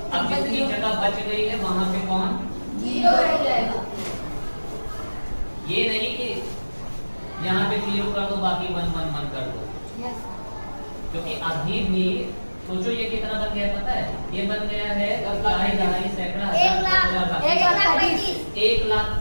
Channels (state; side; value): inverted; both; correlation -1.00